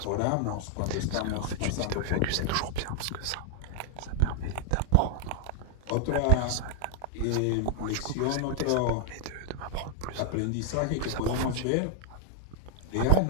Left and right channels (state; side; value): different; both; correlation -0.01